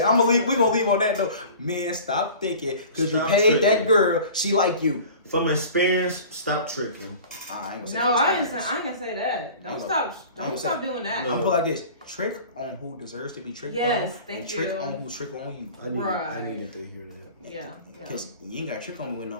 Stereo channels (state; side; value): inverted; both; correlation -0.42